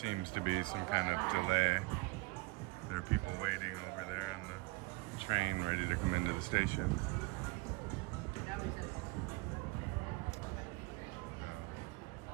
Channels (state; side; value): quieter; left; 24.3 dB